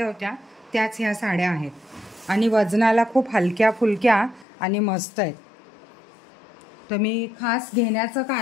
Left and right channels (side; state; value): right; drops out; at 4.5 s